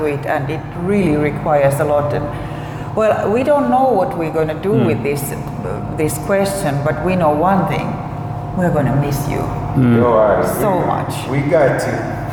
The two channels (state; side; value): identical; both; correlation 1.00